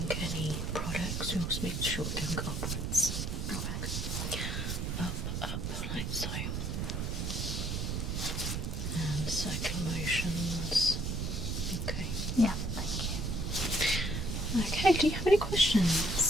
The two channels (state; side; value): noise; right; rumble, 2 dB below the sound